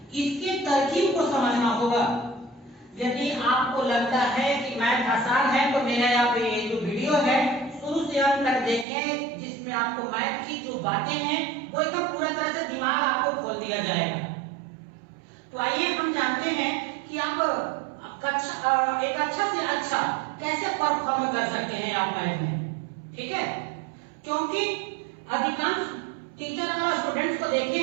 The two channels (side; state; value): left; drops out; at 8.8 s